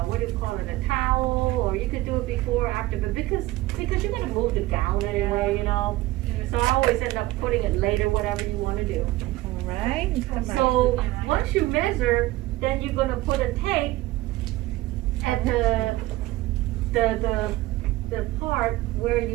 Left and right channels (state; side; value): quieter; left; 18.0 dB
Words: what do you call it, a towel, or you could do it before, or after, but because you're gonna move the gown anyway, you know. So I always end up putting it later, whatever you wanna do. All right. Come back. So, once you measure, then you're gonna put a tape at the part where